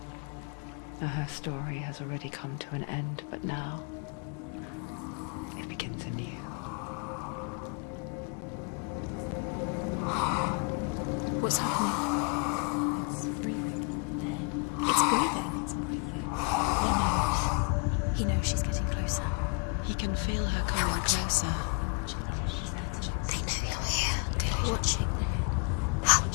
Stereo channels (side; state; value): right; quieter; 34.8 dB